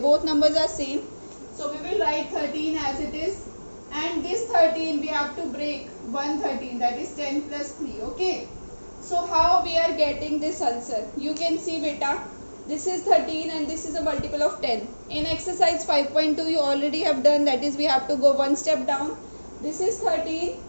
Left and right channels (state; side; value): inverted; both; correlation -1.00